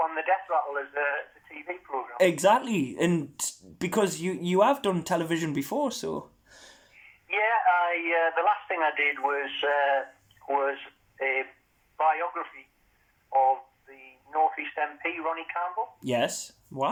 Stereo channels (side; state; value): both; identical; correlation 1.00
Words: the Death Rattle as a TV program. Exactly, and because you have done television before, so. Yeah, the last thing I did was a biography of the North East MP Ronnie Campbell. Yes.